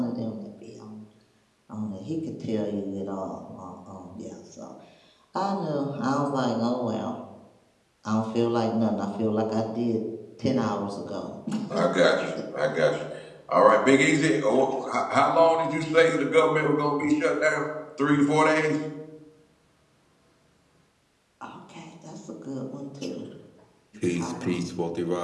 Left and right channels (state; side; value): identical; both; correlation 1.00